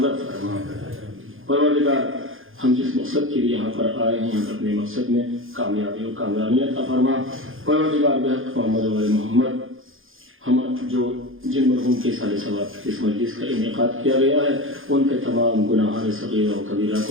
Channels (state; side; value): late; left; 0.59 ms